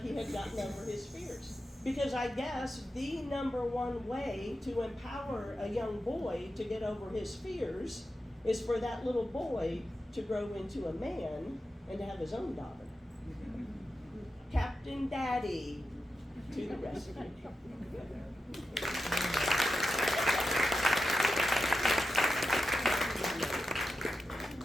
had gotten over his fears. Because I guess the number one way to empower a young boy to get over his fears is for that little boy to grow into a man and to have his own daughter. Captain Daddy to the rescue.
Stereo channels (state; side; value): normal; both; correlation 0.91